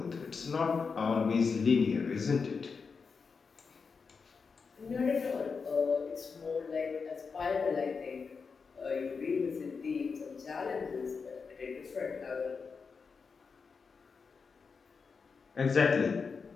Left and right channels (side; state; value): right; quieter; 5.2 dB